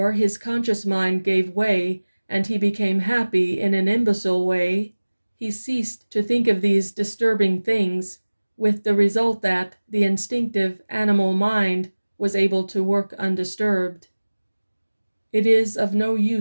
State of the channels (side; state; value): both; inverted; correlation -1.00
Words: his conscious mind gave way, and he became happy in an imbecile way, he ceased to think of these disturbing things, with the result that the instinctive animal mind was able to work undisturbed. It is of no